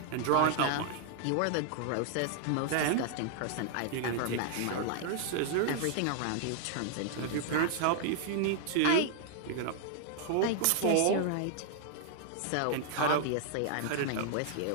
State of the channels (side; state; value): both; different; correlation 0.00